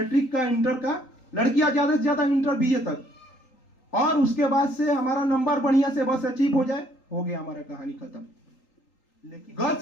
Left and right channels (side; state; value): right; late; 3.8 ms